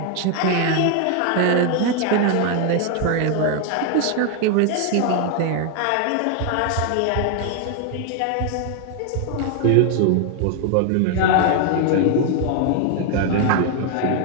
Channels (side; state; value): both; different; correlation 0.00